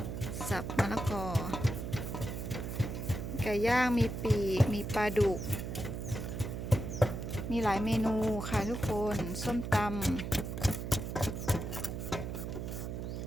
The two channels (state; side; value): noise; right; hum, 5 dB below the sound